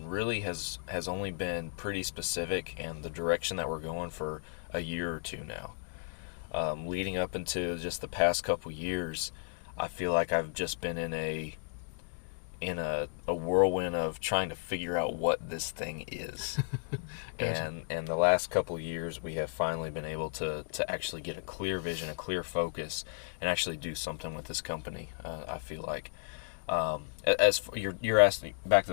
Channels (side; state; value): right; silent; digital silence